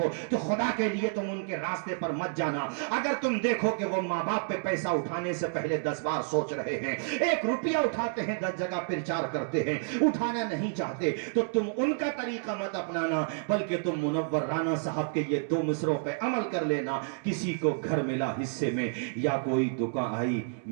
تو خدا کے لیے تم ان کے راستے پر مت جانا۔ اگر تم دیکھو کہ وہ ماں باپ پہ پیسہ اٹھانے سے پہلے 10 بار سوچ رہے ہیں، 1 روپیہ اٹھاتے ہیں 10 جگہ پرچار کرتے ہیں، اٹھانا نہیں چاہتے، تو تم ان کا طریقہ مت اپنانا، بلکہ تم منور رانا صاحب کے یہ 2 مصروں پہ عمل کر لینا۔ کسی کو گھر ملا حصے میں، یا کوئی دکان آئی،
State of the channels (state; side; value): silent; left; digital silence